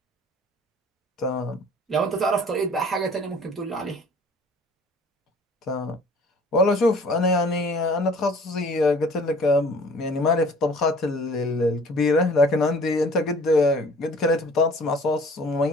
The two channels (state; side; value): normal; both; correlation 0.51